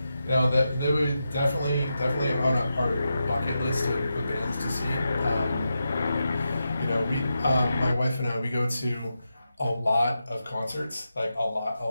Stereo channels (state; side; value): inverted; both; correlation -0.88